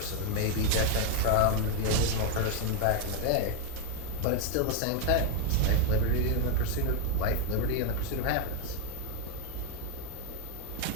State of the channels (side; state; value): both; different; correlation 0.00